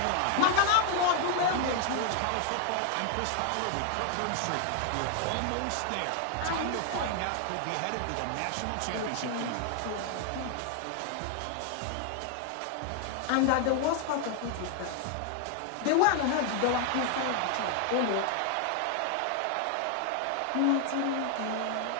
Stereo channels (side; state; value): both; different; correlation 0.00